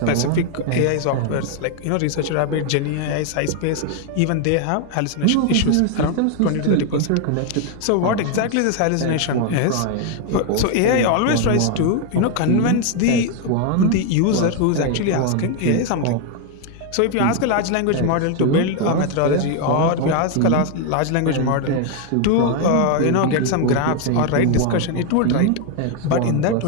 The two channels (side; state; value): both; different; correlation 0.01